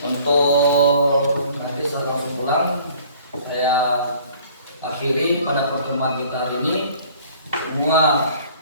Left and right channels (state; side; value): inverted; both; correlation -0.53